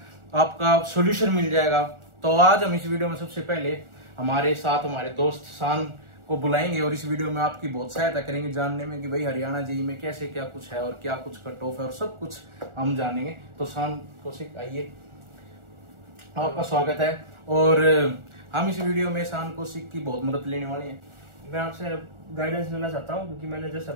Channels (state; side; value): late; left; 1.4 ms